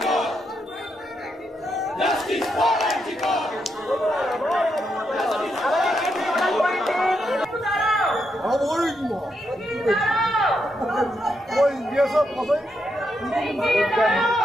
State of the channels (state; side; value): normal; both; correlation 0.81